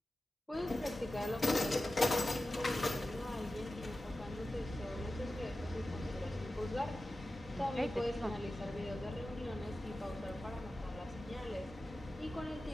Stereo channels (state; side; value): normal; both; correlation 0.94